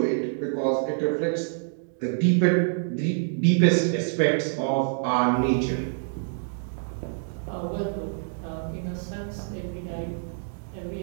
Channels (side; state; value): left; silent; digital silence